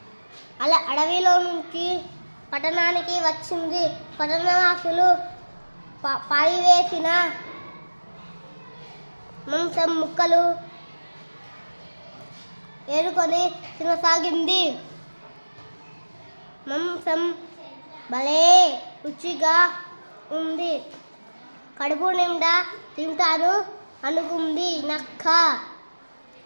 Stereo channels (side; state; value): both; inverted; correlation -1.00